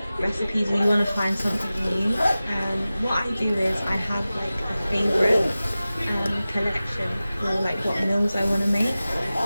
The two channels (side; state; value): both; inverted; correlation -0.96